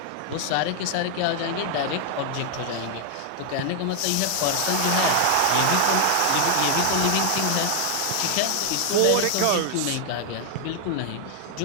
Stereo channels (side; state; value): both; different; correlation 0.00